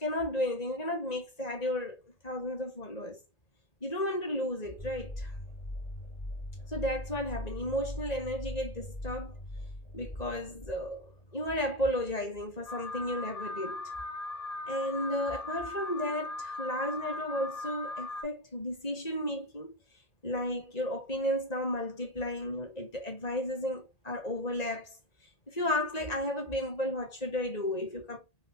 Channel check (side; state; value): right; late; 1.9 ms